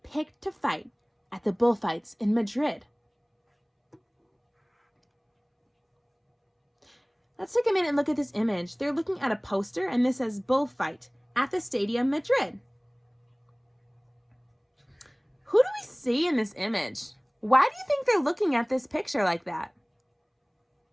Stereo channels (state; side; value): identical; both; correlation 1.00